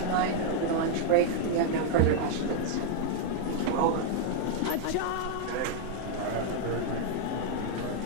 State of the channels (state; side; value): different; both; correlation 0.00